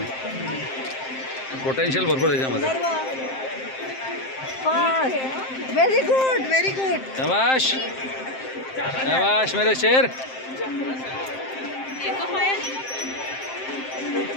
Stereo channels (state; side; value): late; right; 7.6 ms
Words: पोटेन्शियल भरपूर त्याच्यामध्ये. Very good, very good. शाबाश शाबाश मेरे शेर.